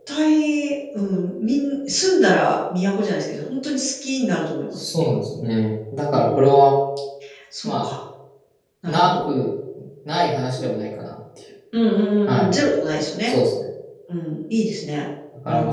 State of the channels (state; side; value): identical; both; correlation 1.00